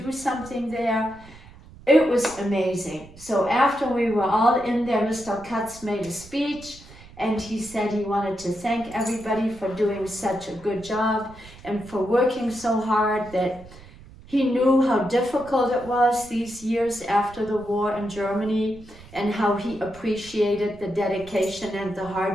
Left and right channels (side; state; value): right; noise; rumble, 20 dB below the sound